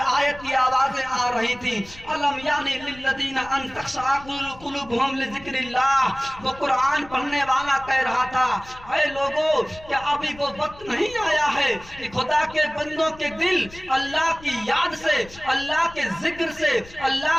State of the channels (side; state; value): left; noise; rumble, 20 dB below the sound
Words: کی آوازیں آ رہی تھی، الم یعنی للذین ان تخشع قلوبہم لذکر اللہ، وہ قرآن پڑھنے والا کہہ رہا تھا اے لوگو کیا ابھی وہ وقت نہیں آیا ہے کہ خدا کے بندوں کے دل اللہ کی یاد سے، اللہ کے ذکر سے، اللہ